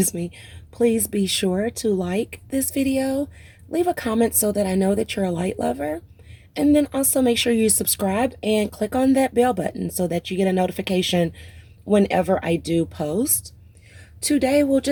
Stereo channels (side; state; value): both; identical; correlation 1.00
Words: be sure to like this video, leave a comment so that I know that you're a light lover, and then also make sure you subscribe and click on that bell button so that you get a notification whenever I do post. Today will